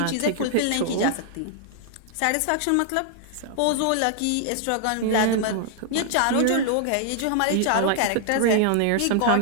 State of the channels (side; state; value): both; different; correlation 0.00